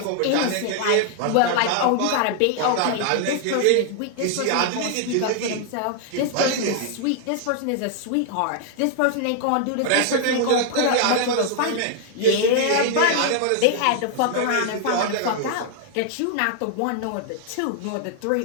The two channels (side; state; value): both; different; correlation 0.00